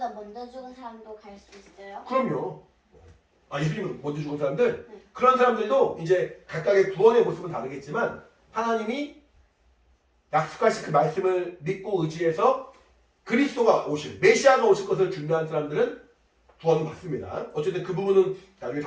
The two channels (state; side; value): identical; both; correlation 1.00